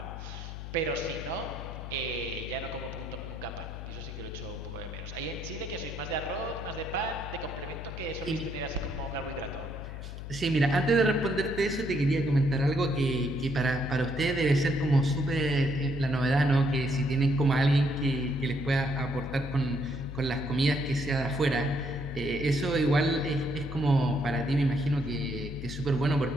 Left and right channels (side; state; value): left; noise; hum, 9 dB below the sound